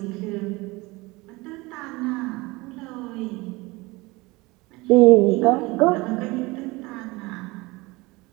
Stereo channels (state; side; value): quieter; left; 22.8 dB